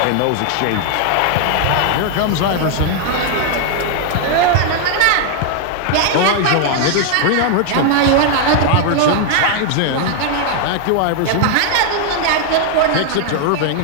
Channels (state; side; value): different; both; correlation 0.00